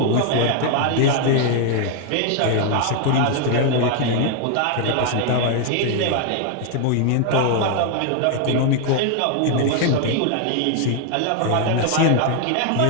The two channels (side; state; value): both; different; correlation 0.00